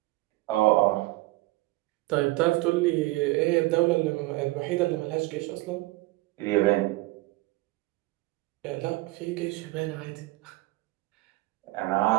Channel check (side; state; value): left; quieter; 20.0 dB